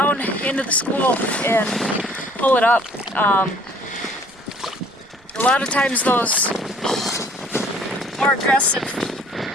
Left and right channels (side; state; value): right; noise; rumble, 29 dB below the sound